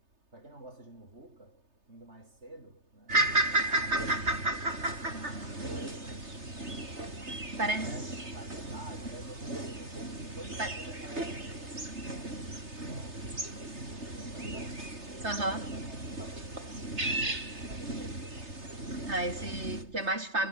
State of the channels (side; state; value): left; late; 3.3 ms